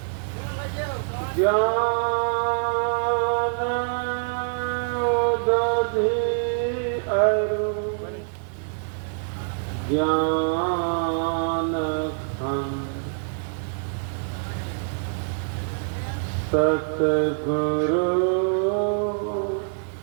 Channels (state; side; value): silent; left; 61 dB below the other